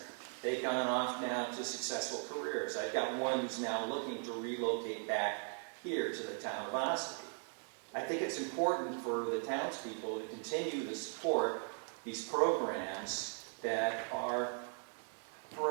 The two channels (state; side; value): silent; left; 52 dB below the other